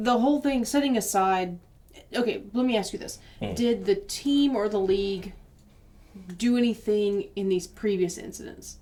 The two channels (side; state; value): both; identical; correlation 1.00